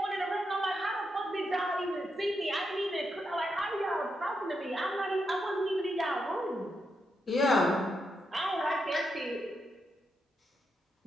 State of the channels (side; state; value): both; normal; correlation 0.83